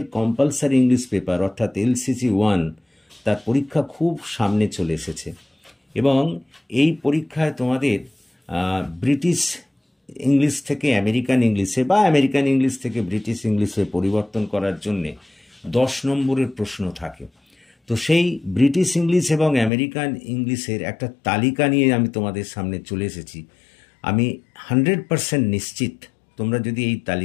কম্পালসারি ইংলিশ পেপার অর্থাৎ LCC-1 তার পরীক্ষা খুব সামনে চলে এসেছে এবং এই পরীক্ষায় তোমাদের ব্রিটিশ ইংলিশ থেকে আমেরিকান ইংলিশে বা আমেরিকান ইংলিশ থেকে ব্রিটিশ ইংলিশে পরিবর্তন করার জন্যে 10 নম্বরের প্রশ্ন থাকে। তো সেই ব্রিটিশ ইংলিশ এবং আমেরিকান ইংলিশের একটা তালিকা নিয়ে আমি তোমাদের সামনে চলে এসেছি। আমি 100% নিশ্চিত তোমরা যদি এই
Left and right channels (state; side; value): drops out; right; at 19.7 s